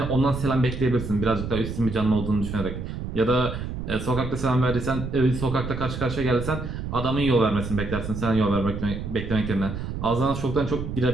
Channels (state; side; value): noise; right; rumble, 6 dB below the sound